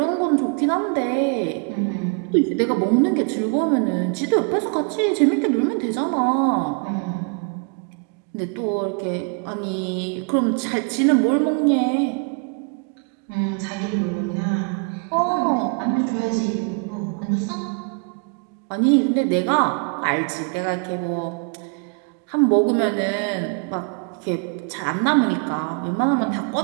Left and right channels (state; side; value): quieter; left; 36.5 dB